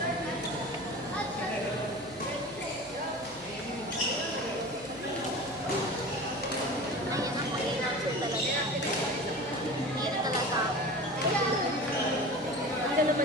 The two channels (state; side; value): noise; left; hum, 23 dB below the sound